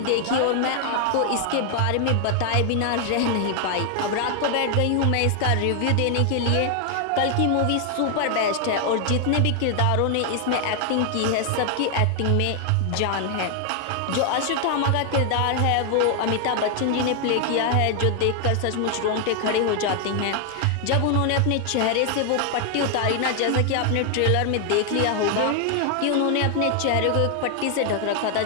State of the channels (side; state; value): both; different; correlation 0.00